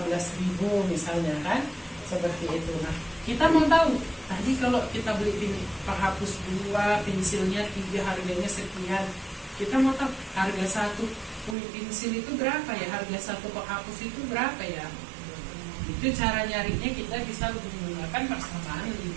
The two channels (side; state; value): left; drops out; at 11.6 s